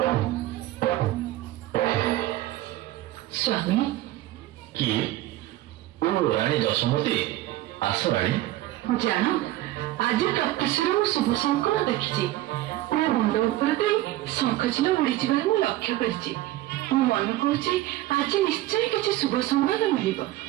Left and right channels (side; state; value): left; quieter; 15.8 dB